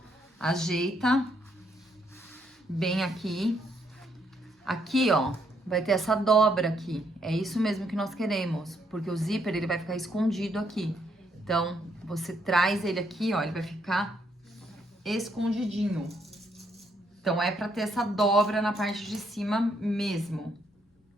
Ajeita bem aqui. Aqui, ó, vai ter essa dobra aqui. É isso mesmo que nós queremos, porque o zíper, ele vai ficar escondido aqui. Então, você traz ele aqui, ó, ele vai ficar escondidinho. Então, é pra ter essa dobra na parte de cima mesmo.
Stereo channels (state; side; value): normal; both; correlation 0.73